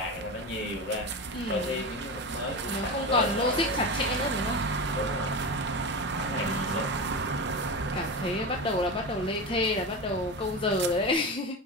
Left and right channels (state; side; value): normal; both; correlation 0.22